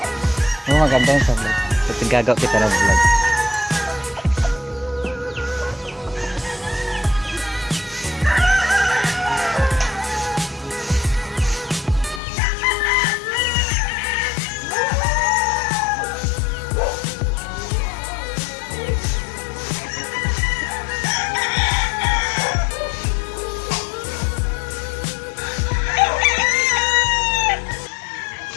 Maganda yung sa vlog. At gagaw kita ng vlog.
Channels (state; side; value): drops out; right; at 12.2 s